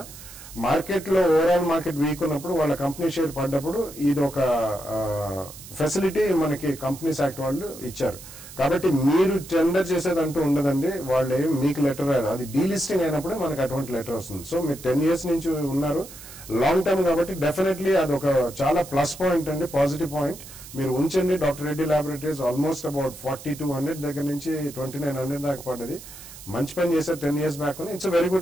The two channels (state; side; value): noise; right; hiss, 16 dB below the sound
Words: మార్కెట్ లో ఓవరాల్ మార్కెట్ వీక్ ఉన్నప్పుడు వాళ్ళ కంపెనీ షేర్ పడ్డప్పుడు ఇది ఒక ఫెసిలిటీ మనకి కంపెనీస్ యాక్ట్ వాళ్ళు ఇచ్చారు. కాబట్టి మీరు టెండర్ చేసేదంటూ ఉండదండి, వాళ్ళు ఏం మీకు లెటర్ రాదు, అది డీలిస్టింగ్ అయినప్పుడే మనకు అటువంటి లెటర్ వస్తుంది. సో మీరు 10 years నుంచి ఉన్నారు, లాంగ్ టర్మ్ కాబట్టి డెఫినెట్లీ అది ఒక చాలా ప్లస్ పాయింట్ అండి, పాజిటివ్ పాయింట్. మీరు ఉంచండి. Doctor Reddy laboratories almost about 4200 దగ్గర నుంచి 2900 దాకా పడ్డది. మంచి పని చేశారు 10 years back. It's very